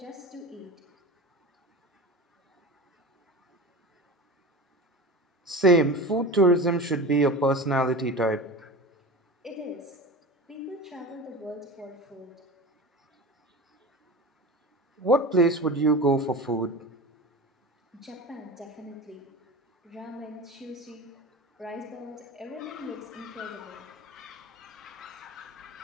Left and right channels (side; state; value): both; normal; correlation 0.30